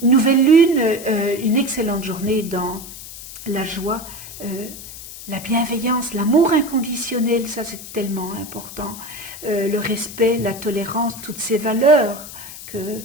nouvelle lune, une excellente journée dans la joie, la bienveillance, l'amour inconditionnel, ça c'est tellement important, le respect, la tolérance, toutes ces valeurs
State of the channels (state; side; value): noise; left; hiss, 13 dB below the sound